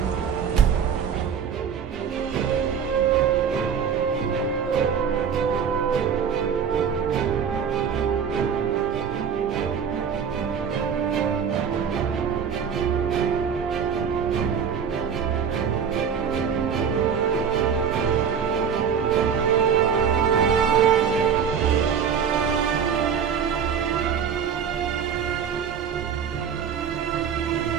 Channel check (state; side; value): quieter; left; 7.3 dB